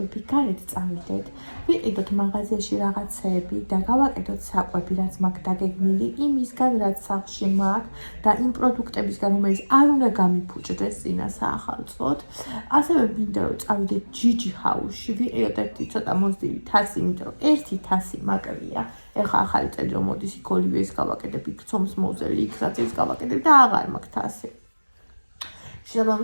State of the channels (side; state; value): both; inverted; correlation -1.00